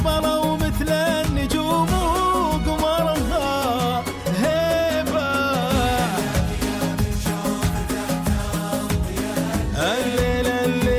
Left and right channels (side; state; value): both; identical; correlation 1.00